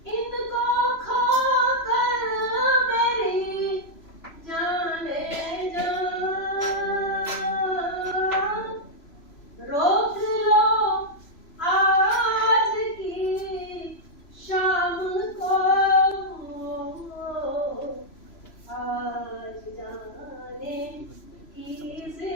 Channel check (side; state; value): right; late; 3.0 ms